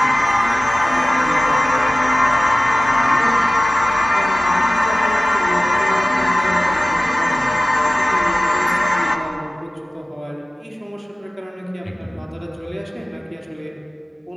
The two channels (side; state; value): both; normal; correlation 0.96